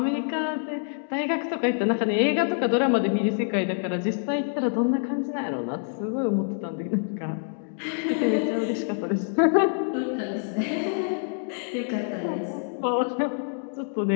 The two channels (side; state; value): right; silent; digital silence